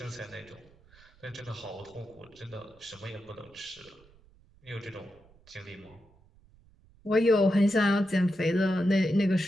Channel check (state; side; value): noise; right; rumble, 28 dB below the sound